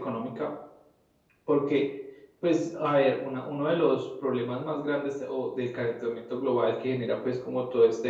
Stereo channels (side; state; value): both; identical; correlation 1.00